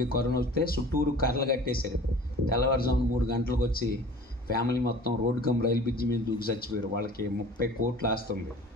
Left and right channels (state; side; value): normal; both; correlation 0.44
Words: కరోనా వస్తే చుట్టూరు కర్రలు కట్టేశారు. తెల్లవారుజామున 3 గంటలకు వచ్చి ఫ్యామిలీ మొత్తం రోడ్డు కమ్ రైలు బ్రిడ్జి మీద దూకి చచ్చిపోయారు. వాళ్ళకి 30 కోట్లు ఆస్తుంది.